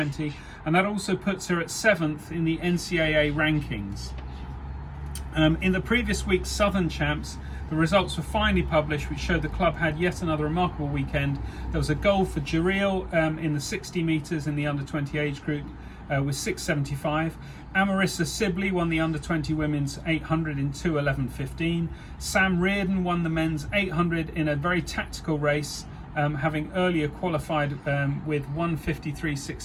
and that also puts her at 7th in the NCAA rankings. In the previous week's Southern Champs, the results were finally published, which showed the club had yet another remarkable weekend. There was a goal for Jareel in the 60 metres in the under-20 age group with 6:75. Amarissa Sibley won the under-20 women's 800 in 2:11.15. Sam Reardon won the men's 800 in a very tactical race, having earlier qualified with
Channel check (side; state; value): both; identical; correlation 1.00